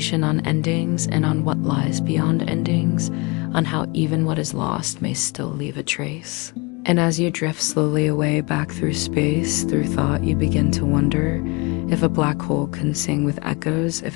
on endings and on what lies beyond endings, on how even what is lost may still leave a trace. And as you drift slowly away back through space, through thought, you begin to wonder if a black hole can sing with echoes.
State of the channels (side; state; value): right; quieter; 27.6 dB